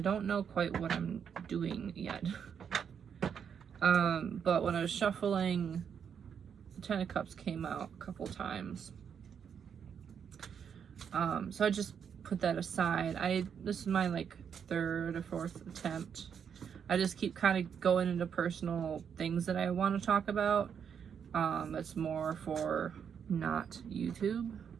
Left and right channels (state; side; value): quieter; left; 7.5 dB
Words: know quite what I'm doing yet. But when I was shuffling, the Ten of Cups came out a couple times. So I just put that aside. This is my like third or fourth attempt. I just keep kind of going into personal things that I want to talk about. It's more for not YouTube.